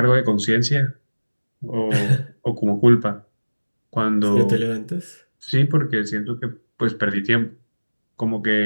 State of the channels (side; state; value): both; inverted; correlation -1.00